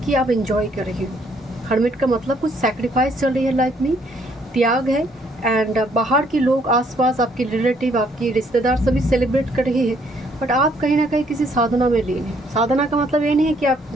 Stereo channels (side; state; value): both; normal; correlation 0.66